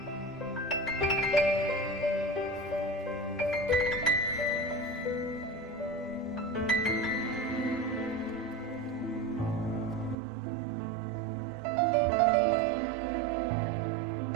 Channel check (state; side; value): drops out; left; at 10.2 s